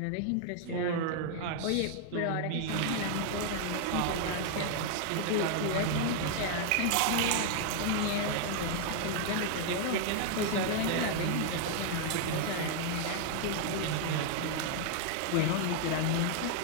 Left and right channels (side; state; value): both; different; correlation 0.00